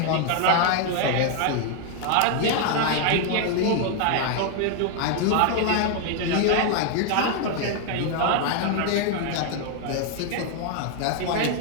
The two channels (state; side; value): different; both; correlation 0.00